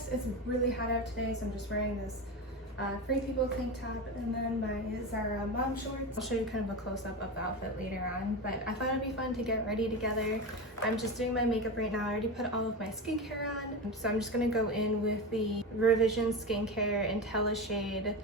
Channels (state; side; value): normal; both; correlation 0.21